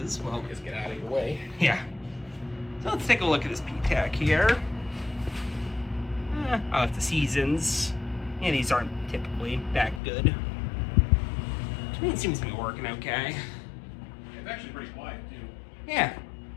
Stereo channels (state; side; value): drops out; right; at 10.0 s